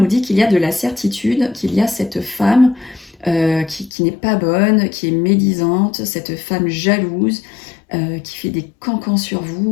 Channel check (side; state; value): right; drops out; at 3.9 s